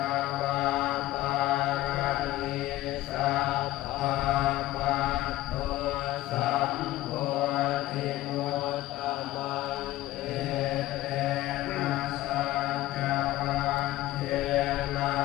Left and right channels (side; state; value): right; quieter; 16.0 dB